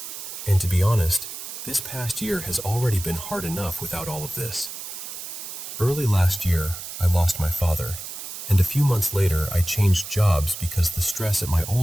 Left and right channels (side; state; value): right; noise; hiss, 9 dB below the sound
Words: And to be honest, this past year has already been hard enough without all of this. Early last year, I lost my father, and a few months later I changed jobs because the stress at my